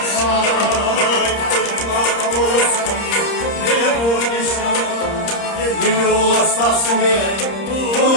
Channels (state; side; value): late; right; 30 ms